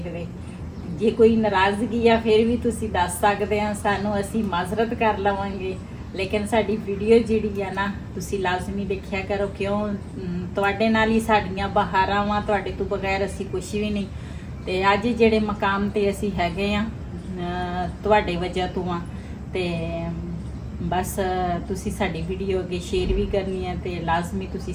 जे कोई नाराज़गी आ फिर भी तुसीं दस सकदे आ सानू, असीं माज़रत कर लवांगे। लेकिन साडी वीडियो जिहड़ी आ ना तुसीं लाजमी देखिया करो, क्यों तुहाडे नाल ही साडीआं बहारां वां, तुहाडे तो बगैर असीं कुछ भी नहीं। ते अज जिहड़े मकाम ते असीं हैगे आ तुहाडे वजह तो आ ते बस तुसी साडी वीडियो अगे शेयर भी करनी है ते लाजमी तुसी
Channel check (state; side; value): identical; both; correlation 1.00